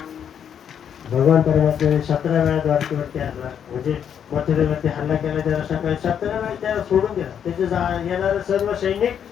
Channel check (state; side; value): quieter; right; 8.5 dB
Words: भगवान परमात्म्याने 17 वेळा द्वारकेवरती हल्ला, म्हणजे मथुरेवरती हल्ला केला. त्याला सकाळी 17 वेळा त्याला सोडून दिला. त्याचे येणारे सर्व सैनिक